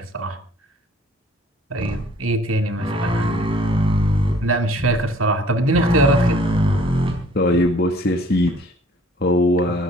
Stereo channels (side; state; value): both; normal; correlation 0.55